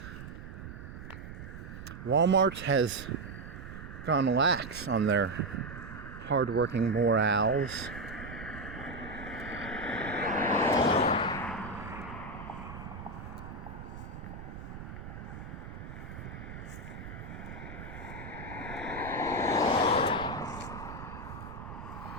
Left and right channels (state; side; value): noise; right; rumble, 10 dB below the sound